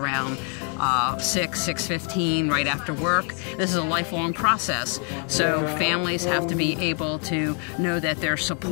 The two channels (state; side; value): quieter; right; 39.5 dB